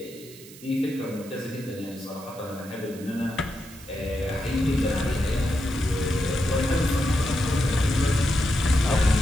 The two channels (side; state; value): right; noise; hiss, 19 dB below the sound